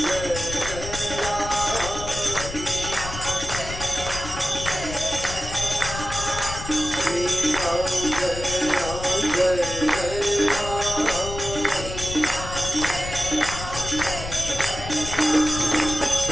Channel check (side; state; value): left; noise; rumble, 8 dB below the sound